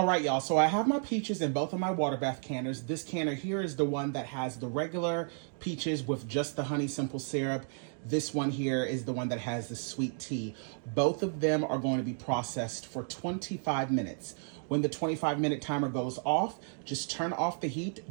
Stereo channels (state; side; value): silent; left; 56 dB below the other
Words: right, y'all, so I have my peaches in both of my water bath canners. This canner here is the one that has the regular peaches with just the honey simple syrup. This one here is the one that has the sweet tea. Both of them are going to be processed for 25 minutes. When the 25-minute timer goes off, just turn off the